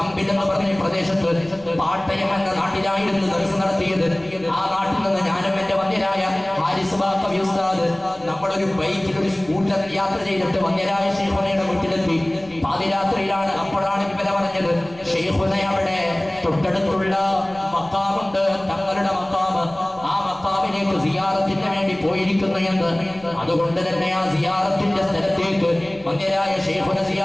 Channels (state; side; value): noise; left; rumble, 24 dB below the sound